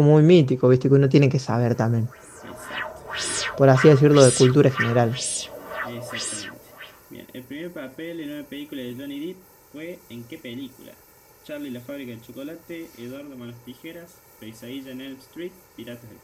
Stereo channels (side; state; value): both; identical; correlation 1.00